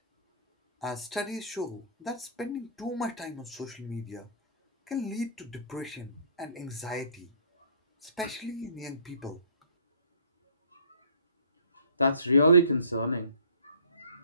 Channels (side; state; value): both; inverted; correlation -0.50